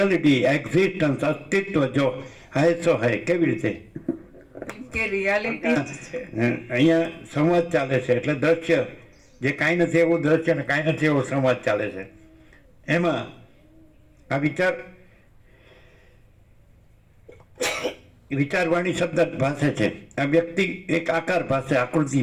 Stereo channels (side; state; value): both; identical; correlation 1.00